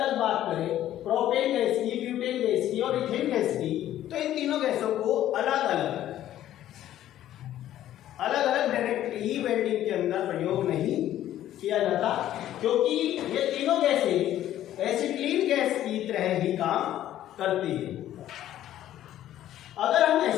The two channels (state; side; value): quieter; right; 12.5 dB